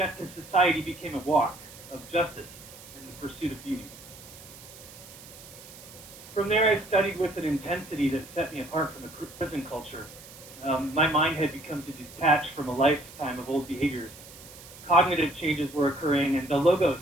to society became a walk of justice and the pursuit of beauty. From there, I studied with an intensity that set me apart from the prison culture. My mind had become to detach from a lifetime of old behaviors. Cognitive changes were occurring, and the logos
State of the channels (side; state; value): right; noise; hiss, 18 dB below the sound